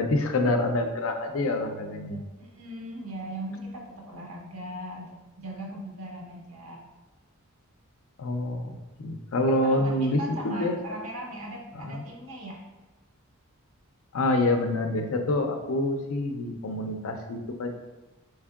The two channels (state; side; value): normal; both; correlation 0.19